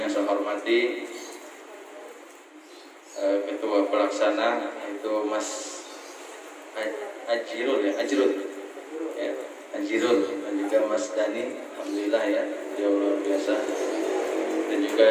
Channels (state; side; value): identical; both; correlation 1.00